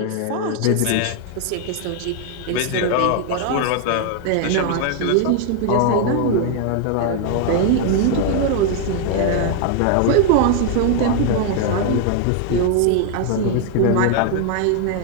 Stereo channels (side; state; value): both; different; correlation 0.00